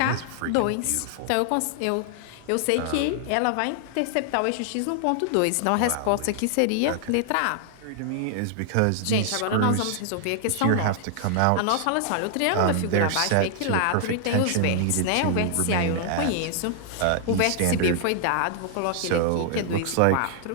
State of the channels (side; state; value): both; different; correlation -0.01